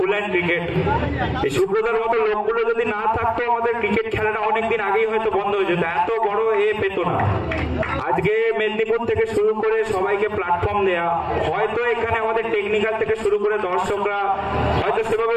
hand cricket এই সুব্রতার মতো লোকগুলো যদি না থাকতো আমাদের ক্রিকেট খেলাটা অনেকদিন আগেই হয়তো বন্ধ হয়ে যেত এত বড় পেত না আজকে মেদিনীপুর থেকে শুরু করে সবাইকে প্ল্যাটফর্ম দেয়া হয়তো এখানে আমাদের টেকনিক্যাল থেকে শুরু করে দর্শকরা হয়তো সেভাবে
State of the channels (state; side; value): identical; both; correlation 1.00